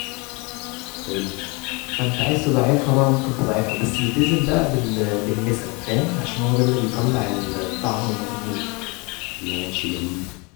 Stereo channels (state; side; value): quieter; right; 28.9 dB